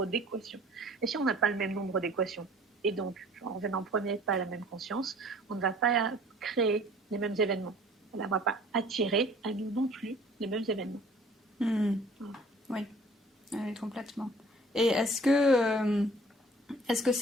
d'équations. Et si on n'a pas le même nombre d'équations, Et donc, en venant en premier pas à la même conscience, on ne va pas créer les mêmes événements. On ne va pas attirer à nous non plus les mêmes événements. Voilà. Oui. Oui, complètement. Et est-ce que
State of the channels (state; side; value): normal; both; correlation 0.52